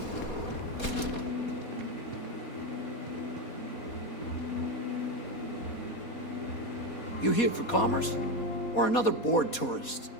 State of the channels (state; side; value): late; right; 4.2 ms